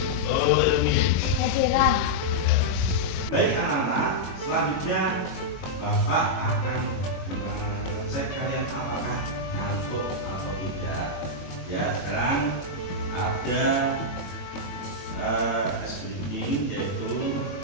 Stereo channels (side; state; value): right; late; 22 ms